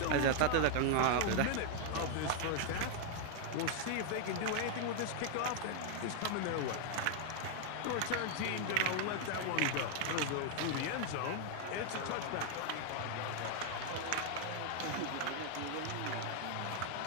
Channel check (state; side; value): different; both; correlation 0.00